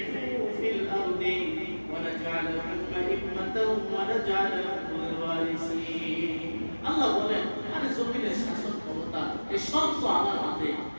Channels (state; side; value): inverted; both; correlation -1.00